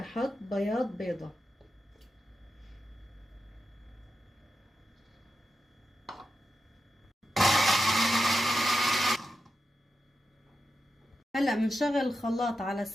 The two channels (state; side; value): normal; both; correlation 0.89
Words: بياض بيضة. هلا بنشغل الخلاط على